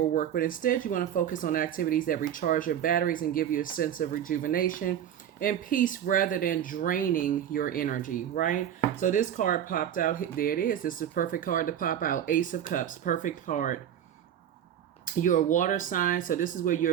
but instead you want to focus on activities that recharge your batteries and give you a sense of rejuvenation and peace rather than draining your energy, right? So this card popped out. There it is. This is a perfect card to pop out. Ace of Cups, perfect card. You're a water sign, so this is where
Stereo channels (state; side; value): quieter; left; 10.0 dB